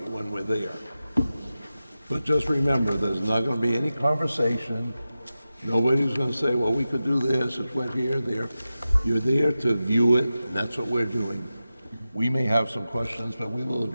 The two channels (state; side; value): inverted; both; correlation -0.94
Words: when we're there. But just remember, there's not gonna be any conversation. Nobody's gonna say, well, we could do this, it's wet here, there. You're there to view it, and that's what we're doing. We may have some questions, but we will